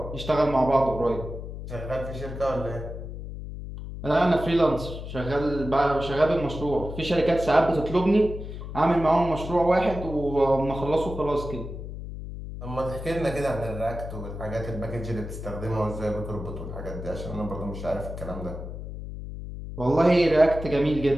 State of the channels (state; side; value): noise; left; hum, 9 dB below the sound